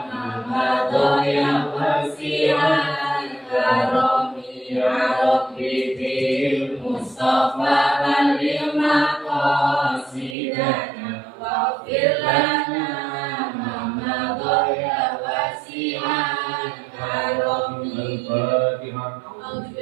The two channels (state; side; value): drops out; left; at 10.4 s